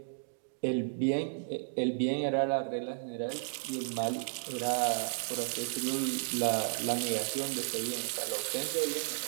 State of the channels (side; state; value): left; silent; digital silence